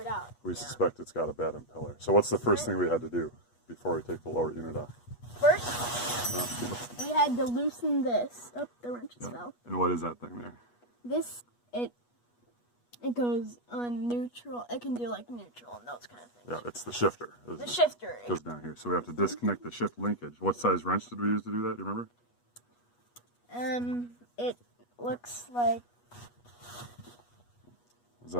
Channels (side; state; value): right; late; 8.3 ms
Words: out. we suspect it's got a bad impeller. So what's the first thing we had to do before we take the lower unit off? First, we had to loosen this. Oh, the wrenches fell. And what is that thing there? This, it goes on neutral. It can do like neutral and those kind of things. Yeah, it's the shifter. The shifter. It goes down here. So we have to disconnect the shift linkage. What size wrench did we use to do that? Do you remember? It looks like. Is